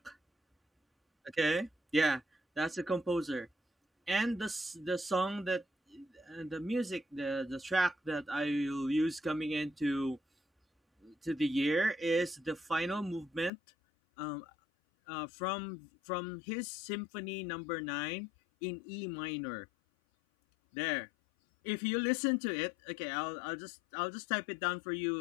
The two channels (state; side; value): drops out; right; at 13.5 s